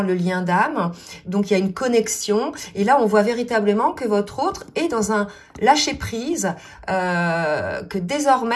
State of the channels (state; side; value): identical; both; correlation 1.00